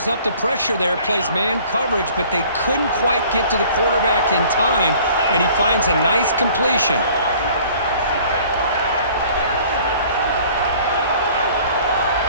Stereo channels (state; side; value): inverted; both; correlation -0.52